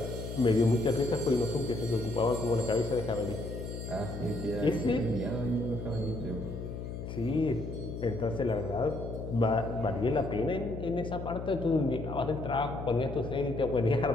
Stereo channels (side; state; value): left; noise; hum, 7 dB below the sound